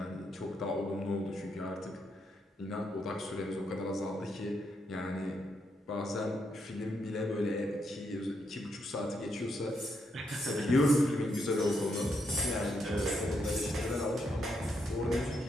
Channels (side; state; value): both; normal; correlation 0.79